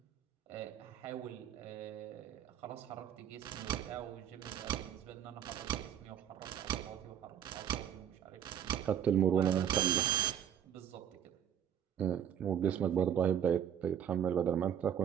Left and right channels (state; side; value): quieter; left; 9.3 dB